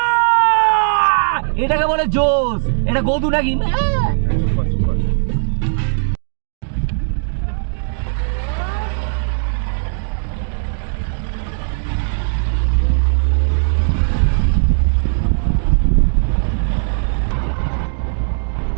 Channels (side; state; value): left; silent; digital silence